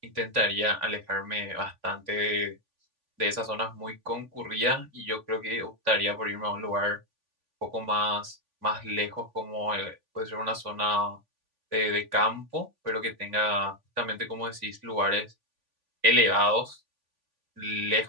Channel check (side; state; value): left; late; 3.5 ms